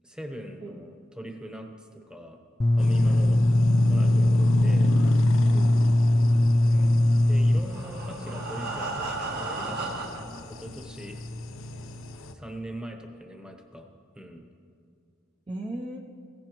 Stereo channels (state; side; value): normal; both; correlation 0.94